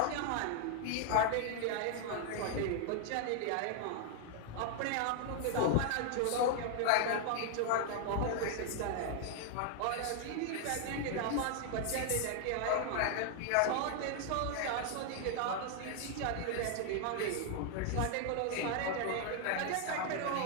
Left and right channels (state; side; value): different; both; correlation 0.00